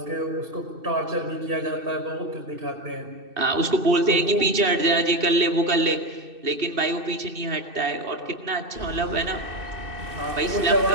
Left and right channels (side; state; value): left; late; 2.6 ms